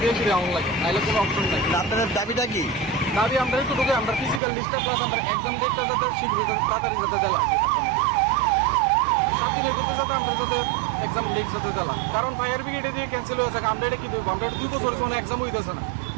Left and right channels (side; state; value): left; drops out; at 4.4 s